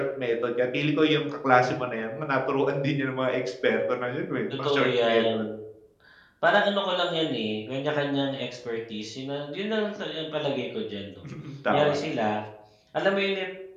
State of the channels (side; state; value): both; identical; correlation 1.00